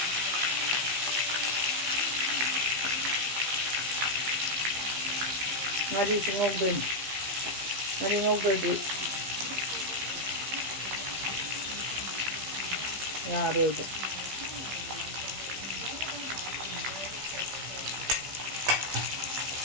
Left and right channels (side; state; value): left; late; 15 ms